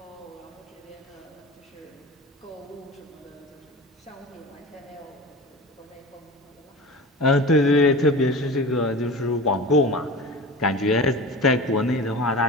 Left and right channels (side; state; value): both; normal; correlation 0.34